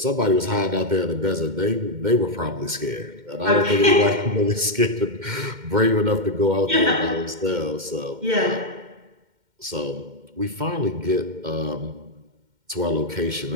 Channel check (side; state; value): left; late; 2.1 ms